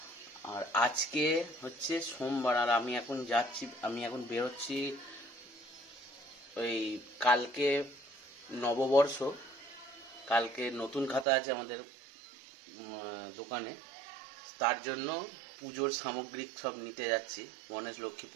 আর আজকে হচ্ছে সোমবার আর আমি এখন বেরোচ্ছি। ওই কালকে নববর্ষ, কালকে নতুন খাতা আছে আমাদের দোকানে, তার জন্য পুজোর সামগ্রিক সব নিতে যাচ্ছি। গণেশ লক্ষ্মী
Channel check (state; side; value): drops out; left; at 11.2 s